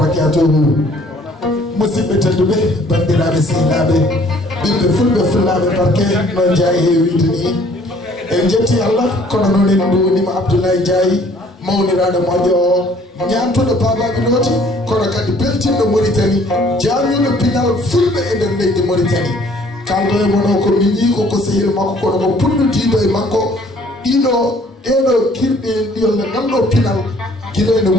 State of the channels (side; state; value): both; normal; correlation 0.58